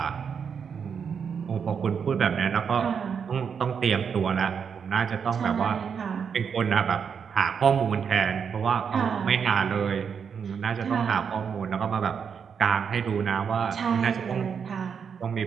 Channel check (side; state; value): left; quieter; 6.8 dB